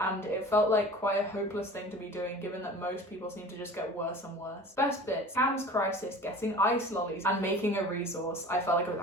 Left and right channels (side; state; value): both; normal; correlation 0.40